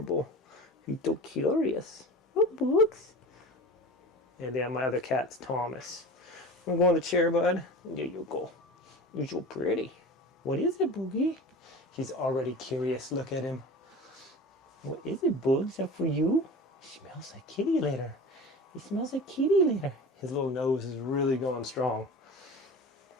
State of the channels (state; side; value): normal; both; correlation 0.34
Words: He's so curious. Oh, Boogs. And yeah, my other cat's Thomas. I'm going to the chair, bud. There you go. You're so pretty. What is it, Boogie? He's already curious. Look at him. What is it, Boogs? Is that for you? He smells like kitty litter. He smells like kitty litter. His little nose is really going strong.